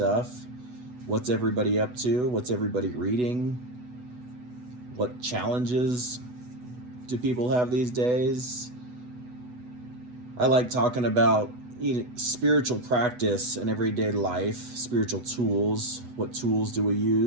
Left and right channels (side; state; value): left; late; 8.1 ms